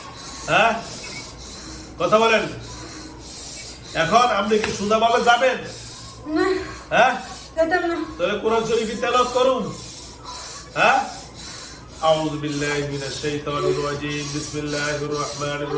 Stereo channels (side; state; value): both; identical; correlation 1.00